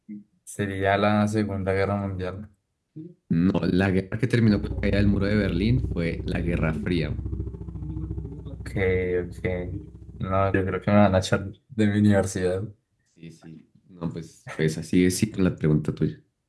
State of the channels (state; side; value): identical; both; correlation 1.00